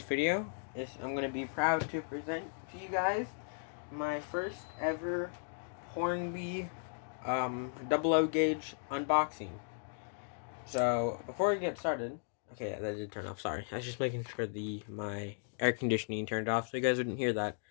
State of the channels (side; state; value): right; silent; digital silence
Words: video, I'm going to be proud to present to you guys my first ever Hornby double O gauge unboxing. So before we get started, okay, yeah, that did turn off. Sorry, I was just making sure my air conditioning turned off so you guys wouldn't hear that,